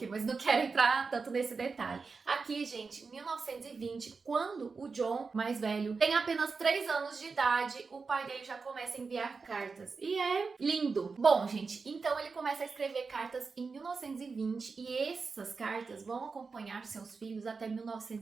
mas não quero entrar tanto nesse detalhe. Aqui, gente, 1920, quando o John, mais velho, tem apenas 3 anos de idade, o pai dele já começa a enviar cartas. E Lindo! Bom, gente, então ele começa a escrever cartas em 1920 e essas cartas vão acompanhar seus filhos até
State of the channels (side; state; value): left; quieter; 4.7 dB